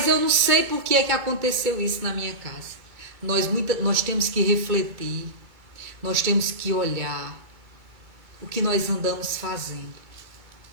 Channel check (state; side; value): late; left; 2.2 ms